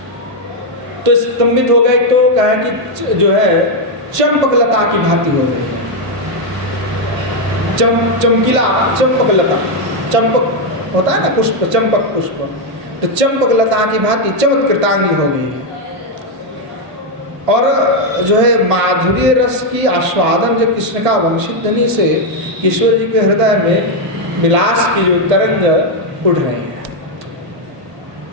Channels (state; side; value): late; left; 1.5 ms